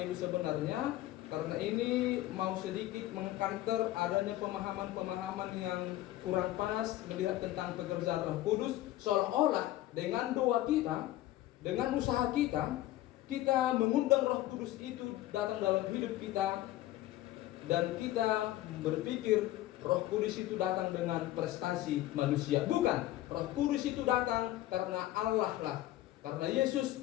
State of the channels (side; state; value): right; quieter; 15.2 dB